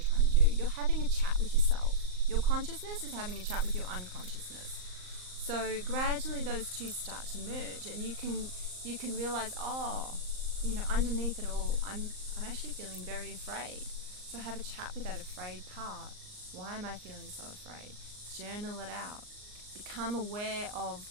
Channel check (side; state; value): left; late; 38 ms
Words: trying to do. You're having a chat with yourself. Your consciousness is having a chat with your unconsciousness. So gradually those two start to merge, and you can realize, underneath it all, I'm actually feeling very afraid. So have a chat with that afraid part. Why am I feeling so afraid? Journal it out. Become aware of